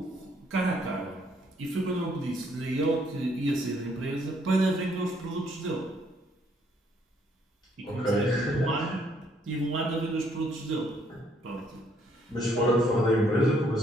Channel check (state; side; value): normal; both; correlation 0.68